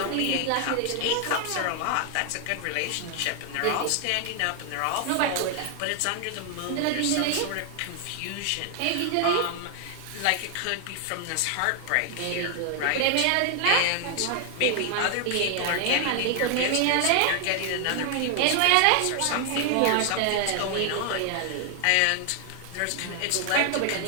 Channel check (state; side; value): different; both; correlation 0.00